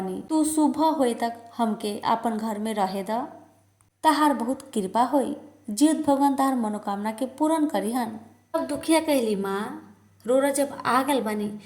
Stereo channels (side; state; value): both; identical; correlation 1.00